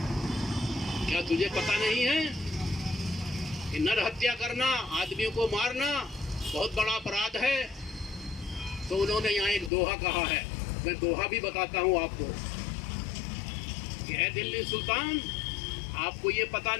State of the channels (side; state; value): right; drops out; at 9.7 s